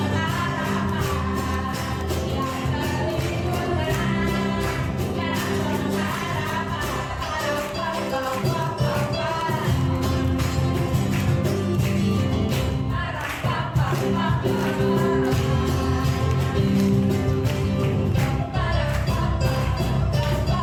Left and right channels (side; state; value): both; identical; correlation 1.00